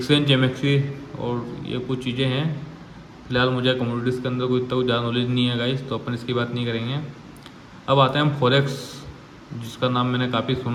एमएक्सी, और ये कुछ चीज़ें हैं। फिलहाल मुझे कमोडिटीज़ के अंदर कोई इतना कुछ ज़्यादा नॉलेज नहीं है गाइस, तो अपन इसकी बात नहीं करेंगे। अब आते हैं हम फॉरेक्स, जिसका नाम मैंने काफ़ी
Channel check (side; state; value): both; identical; correlation 1.00